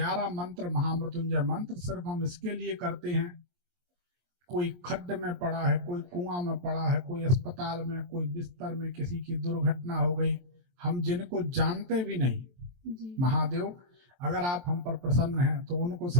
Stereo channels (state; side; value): late; left; 23 ms